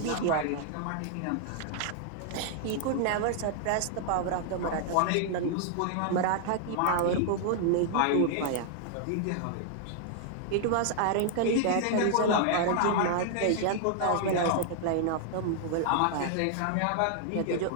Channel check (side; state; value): both; different; correlation 0.00